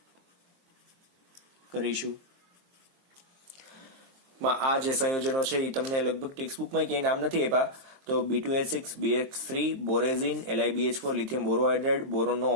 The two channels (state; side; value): late; left; 23 ms